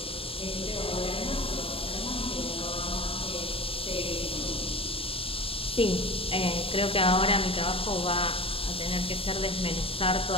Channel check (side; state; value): right; late; 0.27 ms